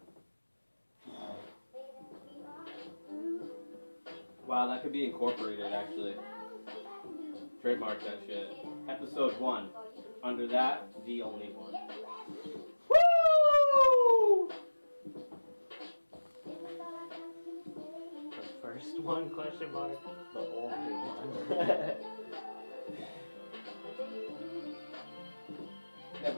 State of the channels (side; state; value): both; inverted; correlation -1.00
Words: Wow, that could be incorporated, actually. Trademark that shit. Episode 1. Under that, the only one. Woo! The first one, question mark? The only one.